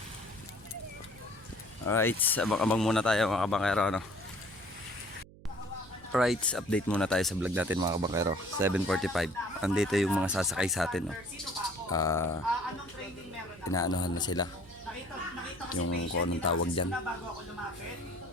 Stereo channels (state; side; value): noise; right; hum, 21 dB below the sound